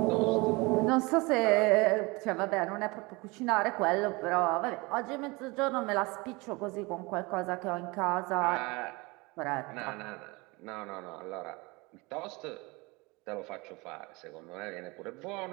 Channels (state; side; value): quieter; left; 25.3 dB